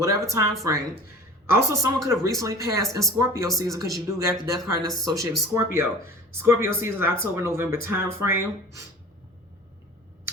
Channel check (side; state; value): both; normal; correlation 0.41